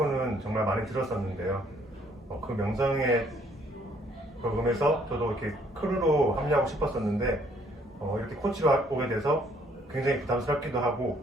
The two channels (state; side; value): normal; both; correlation 0.64